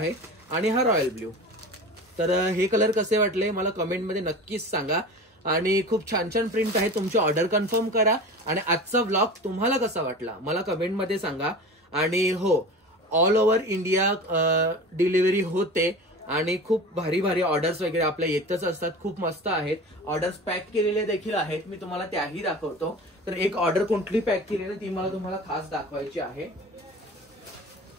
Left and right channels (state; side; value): normal; both; correlation 0.34